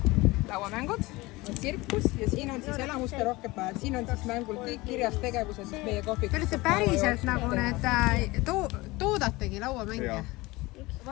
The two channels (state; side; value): quieter; right; 21.5 dB